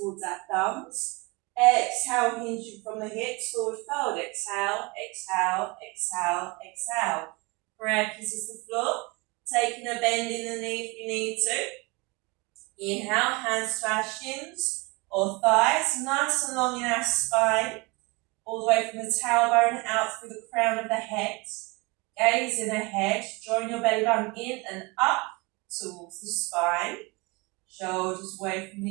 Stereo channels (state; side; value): quieter; left; 26.7 dB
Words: our thumbs. Exhale, hinging from the hips, forward fold. Exhale, exhale, exhale, exhale. Prayer kisses the floor. Taking a bend in the knee if you need to. Inhale, hands to our shins or thighs, nice and long in our spine. All the way from the tailbone out through the crown of the head. Gaze in ahead, drawing your belly button in and up towards the spine, shoulders away from